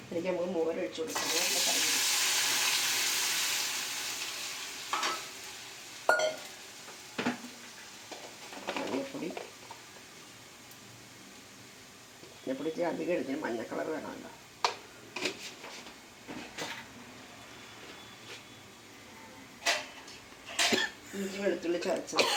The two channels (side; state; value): both; identical; correlation 1.00